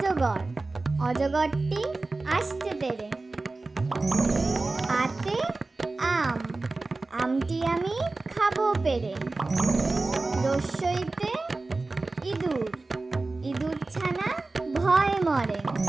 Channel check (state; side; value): quieter; left; 3.4 dB